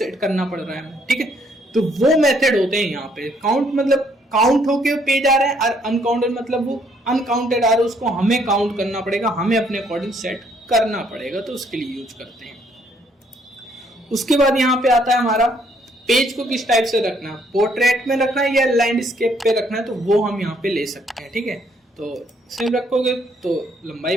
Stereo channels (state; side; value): normal; both; correlation 0.68